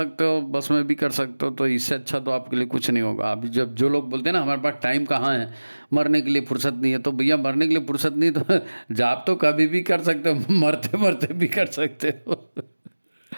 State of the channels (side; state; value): both; inverted; correlation -1.00